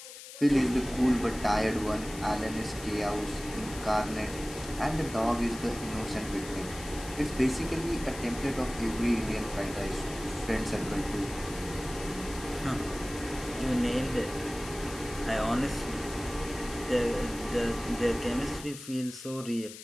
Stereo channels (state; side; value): noise; left; hiss, 13 dB below the sound